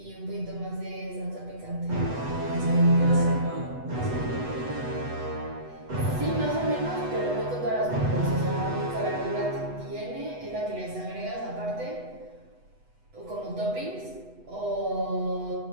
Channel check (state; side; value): late; left; 8.1 ms